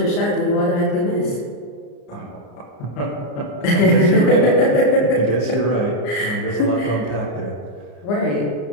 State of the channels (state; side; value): late; right; 34 ms